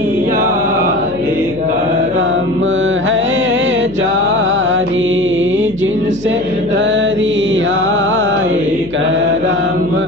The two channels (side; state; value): left; noise; hum, 17 dB below the sound